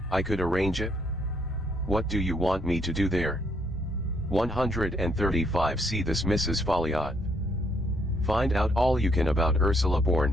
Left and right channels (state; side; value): normal; both; correlation 0.71